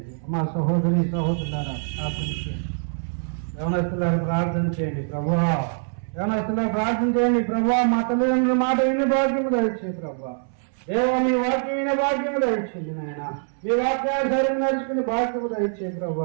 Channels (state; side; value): silent; left; 63 dB below the other